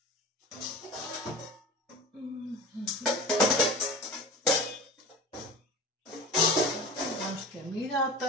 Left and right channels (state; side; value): normal; both; correlation 0.34